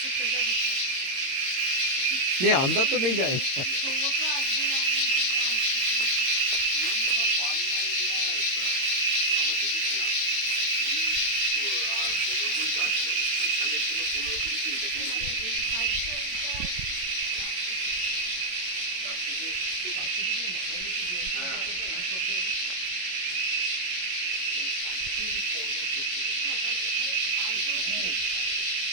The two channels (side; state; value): left; late; 22 ms